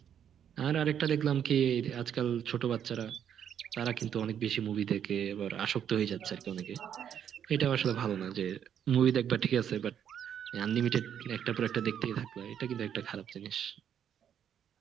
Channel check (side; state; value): left; quieter; 9.0 dB